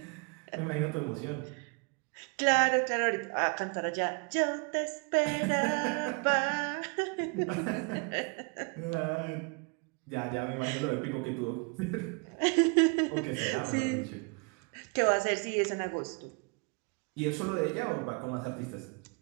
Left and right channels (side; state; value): left; quieter; 32.8 dB